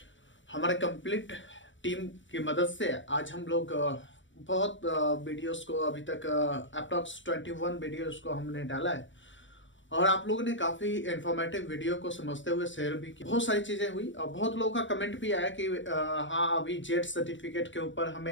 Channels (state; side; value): late; right; 0.55 ms